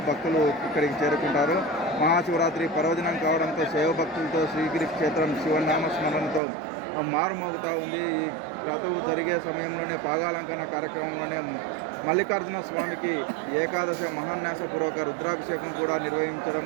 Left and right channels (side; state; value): left; drops out; at 6.4 s